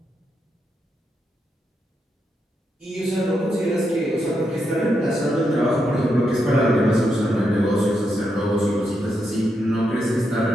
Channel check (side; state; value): both; normal; correlation 0.82